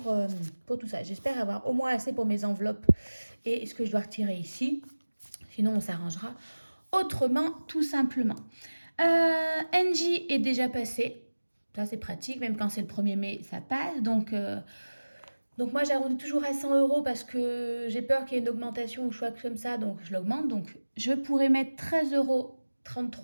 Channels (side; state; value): both; inverted; correlation -1.00